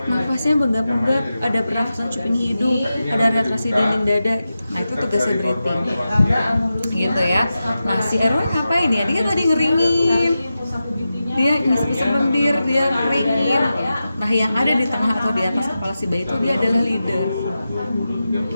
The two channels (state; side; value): inverted; both; correlation -0.92